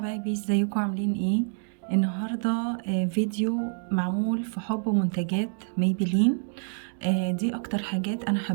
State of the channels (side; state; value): left; silent; 60 dB below the other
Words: ازيكم عاملين ايه؟ النهاردة فيديو معمول في حب منتجات ميبلين. دي اكتر حاجات انا